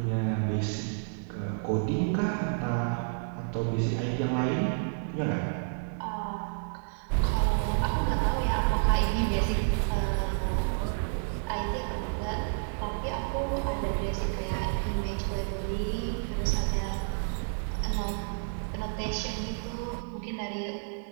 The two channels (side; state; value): left; silent; digital silence